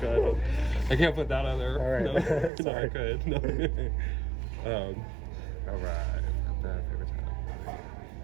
I can't put that on there. All right. No, no, I Sorry. could. No. All right. That favorite time.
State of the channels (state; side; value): drops out; left; at 2.5 s